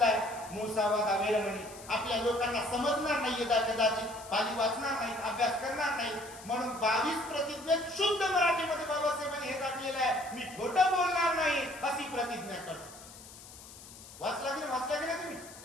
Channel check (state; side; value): noise; left; hiss, 17 dB below the sound